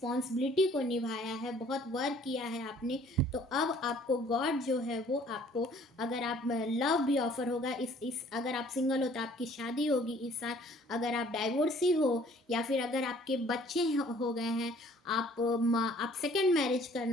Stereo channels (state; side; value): normal; both; correlation 0.56